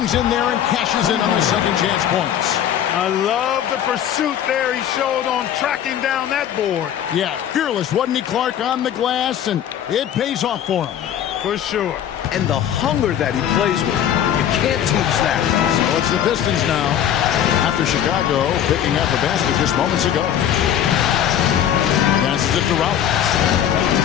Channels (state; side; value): quieter; right; 10.0 dB